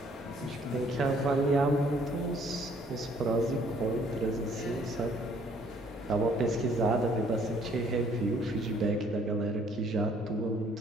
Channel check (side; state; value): both; normal; correlation 0.62